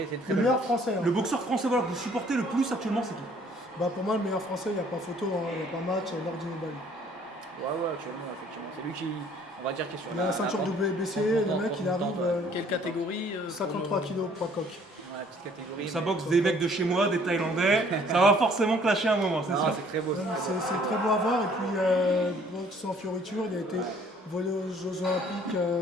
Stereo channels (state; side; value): normal; both; correlation 0.58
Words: Le bel meilleur boxeur. français. hein. Le boxeur français voilà, que vous supportez le plus actuellement, c'est qui? Bah, pour moi, le meilleur français, il n'y a pas photo, hein, il n'y a pas match, Nordino Bali. Ouais, actuellement, effectivement. C'est lui qui, on va dire, qui est sur Il a la ceinture WBC, le mec, il arrive Quelle catégorie 53 kilos poids coq. Ouais, petite catégorie. Ça mais- boxe des mecs de chez moi, des Thaïlandais, ça va forcément clasher un moment, c'est Non, sûr. c'est très beau. Non, c'est mais très beau. c'est très beau à voir. Et puis, boxe sans fioriture, il a été volé aux Jeux Olympiques